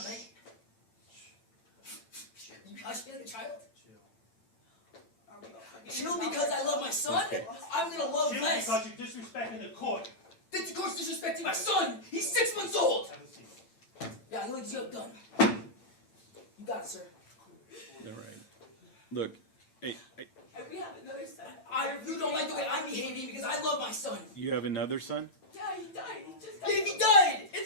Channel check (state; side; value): late; right; 8.9 ms